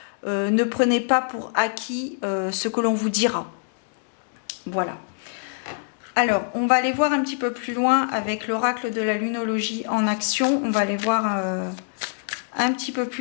Ne prenez pas pour acquis ce que l'on vous dira. Voilà. Alors, on va aller voir un petit peu plus loin avec l'oracle de la lunologie en action. On va aller voir un petit peu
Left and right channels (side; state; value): right; silent; digital silence